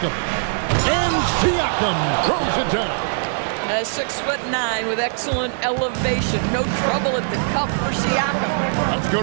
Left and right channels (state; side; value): silent; left; 65 dB below the other